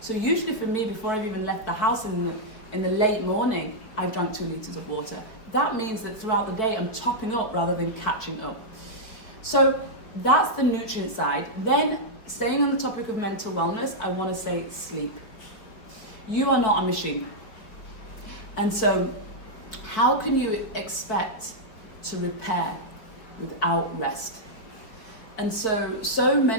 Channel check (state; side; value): late; right; 4.8 ms